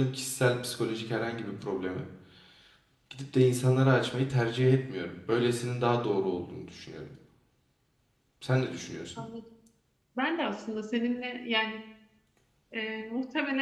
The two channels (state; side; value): identical; both; correlation 1.00